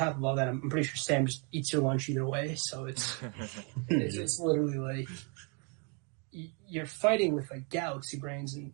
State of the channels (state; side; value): quieter; left; 35.8 dB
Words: of all that, I'm pretty sure Sam just eats your lunch either way. So it's literally like you're fighting with like galaxy brains, and